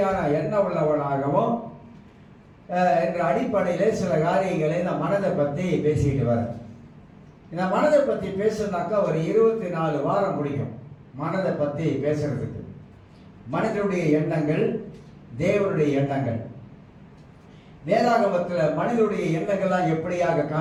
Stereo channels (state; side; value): identical; both; correlation 1.00